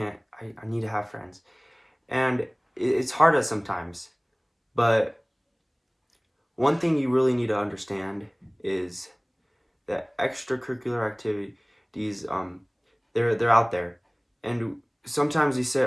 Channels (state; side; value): identical; both; correlation 1.00